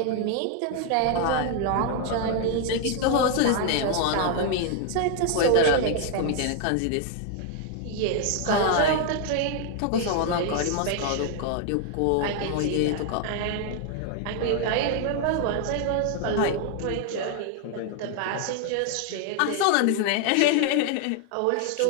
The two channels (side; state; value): both; different; correlation 0.00